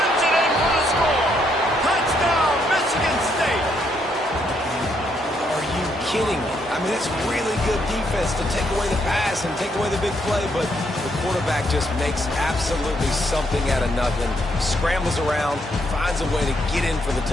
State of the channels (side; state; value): both; normal; correlation 0.74